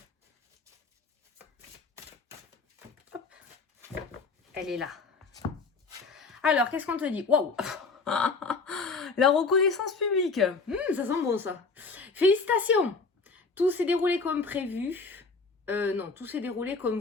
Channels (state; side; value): quieter; right; 4.2 dB